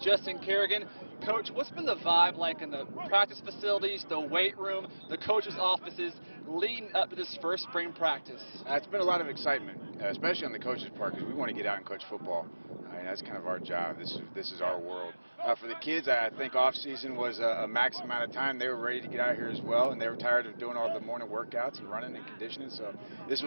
Kerrigan. Coach, what's been the vibe like in the practice facilities, the weight room, the coaches' offices leading up to this first spring practice? It's been a lot of excitement, especially on the coaches' part, because we want to get out and coach football. That's kind of our job. This is our world. For the kids, I think off season was a max amount of time. They were ready to get out here as well, and they were tired of doing all the morning workouts and running and conditioning, so this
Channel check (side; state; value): both; inverted; correlation -1.00